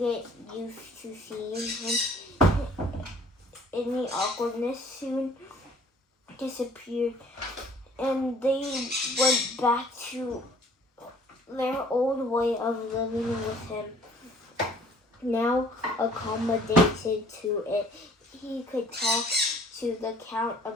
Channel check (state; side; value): normal; both; correlation 0.55